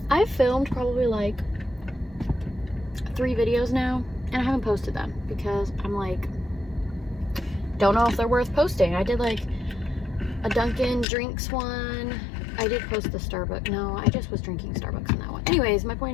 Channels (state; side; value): drops out; right; at 11.1 s